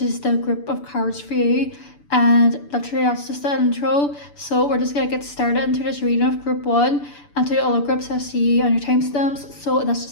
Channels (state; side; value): late; right; 6.9 ms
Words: is the group of cards for you. And literally that's just the intro. So we're just going to get started into this reading of group 1. And to the other groups I see on your timestamps. So that's